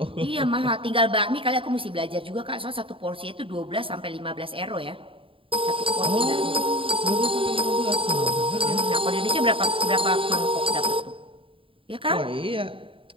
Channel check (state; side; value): late; left; 0.26 ms